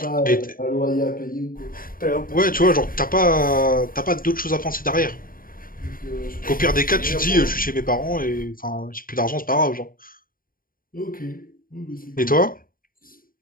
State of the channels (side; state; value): right; late; 0.41 ms